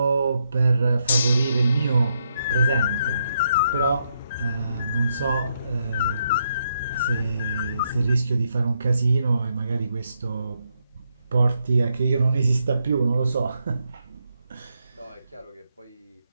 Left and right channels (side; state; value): both; inverted; correlation -0.78